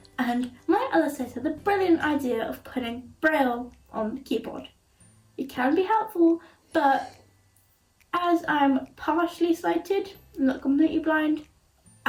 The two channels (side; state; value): both; identical; correlation 1.00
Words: and my LSA had the brilliant idea of putting Braille on the keyboard. It can be helpful, but as I'm partially sighted, I'm not completely blind,